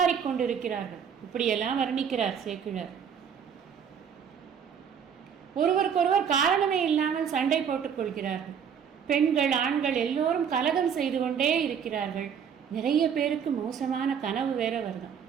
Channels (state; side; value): quieter; left; 7.6 dB